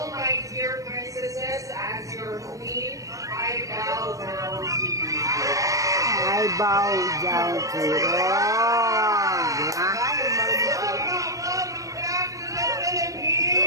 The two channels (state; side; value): late; left; 0.16 ms